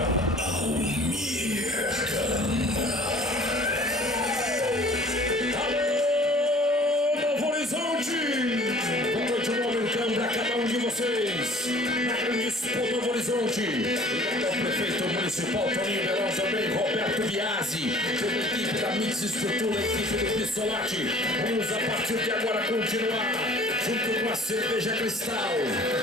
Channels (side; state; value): both; normal; correlation 0.49